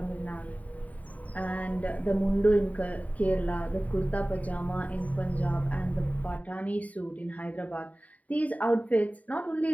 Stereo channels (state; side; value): late; right; 0.070 ms